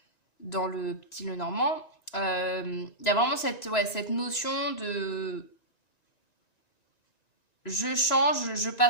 dans le petit Lenormand. Il y a vraiment cette notion de je change, je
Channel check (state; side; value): late; right; 1.9 ms